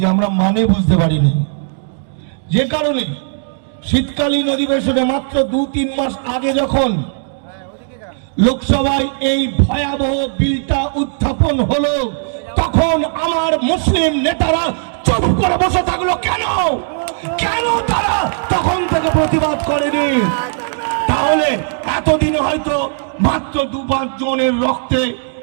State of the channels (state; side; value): silent; left; digital silence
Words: আমরা মানে বুঝতে পারিনি। যে কারণে শীতকালীন অধিবেশনে মাত্র 2-3 মাস আগে যখন লোকসভায় এই ভয়াবহ বিলটা উত্থাপন হলো, তখন আমার মুসলিম নেতারা চুপ করে বসে থাকলো। কেন কেন তারা তখন থেকে প্রতিবাদ করেনি? তাহলে এতদিনে হয়তো মাত্র 2-5 জনের রক্তে